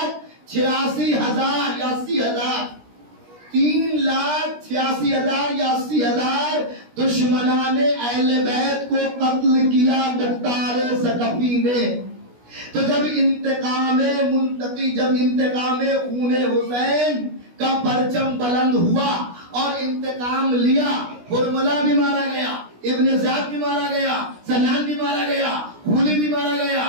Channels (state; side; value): late; left; 16 ms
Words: या 80,000 3,86,000 या 80,000 दुश्मनाने अहले बैत को कत्ल किया मुख्तार सकफी ने। तो जब इंतकामे मुंतकी, जब इंतकामे खूने हुसैन का परचम बुलंद हुआ और इंतकाम लिया, हुरमला भी मारा गया, इब्ने ज़ियाद भी मारा गया, सनान भी मारा गया, हुली भी मारा